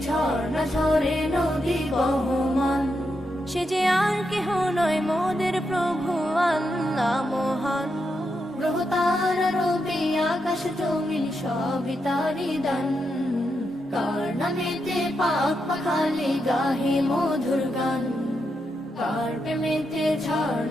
ঝর্ণা ঝরে নদী বহমান। সে যে আর কেহ নয় মোদের প্রভু আল্লাহ মহান, গ্রহ তারা রবি আকাশ জমিন সবই তারি দান। কার নামেতে পাক পাখালি গাহে মধুর গান, কার প্রেমেতে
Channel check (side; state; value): both; normal; correlation 0.84